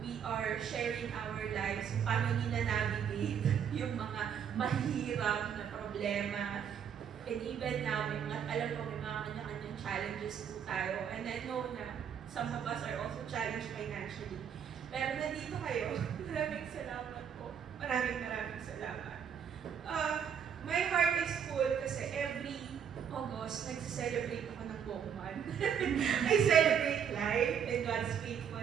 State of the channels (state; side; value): quieter; left; 8.0 dB